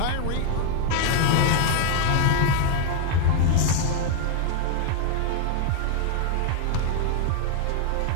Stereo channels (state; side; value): different; both; correlation 0.00